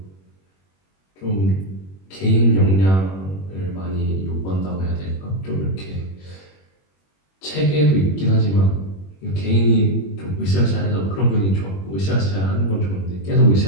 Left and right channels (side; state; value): right; late; 21 ms